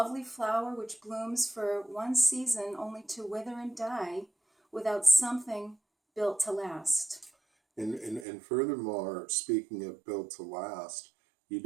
flower which blooms for one season only to wither and die without something built to last. And furthermore, speaking of built to last, you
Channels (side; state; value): left; drops out; at 8.2 s